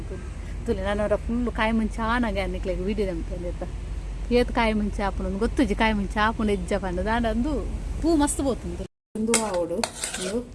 ತುಲಿ ನಾನು ಫುಲ್ಲು ಕಾಯಿ ಮುಂಚೆ ಆನಾಗೆ ಅನ್ನಿಕ್ಲೆಗೆ ವಿಡಿದಂತಂದು ಎತ್ತ ಏತು ಕಾಯಿ ಮುಂಚೆ ಆಪುನ ಗೊತ್ತುಜಿ ಕಾಯಿ ಮುಂಚೆ ಆಪುನ ಎಜ್ಜ ಪಂಡ ದಾಂಡು ಪೂ ಮಸ್ತ್ ಪೋತುಂದು ಒಂದು ಆವಡು ಒಂದು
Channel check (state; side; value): identical; both; correlation 1.00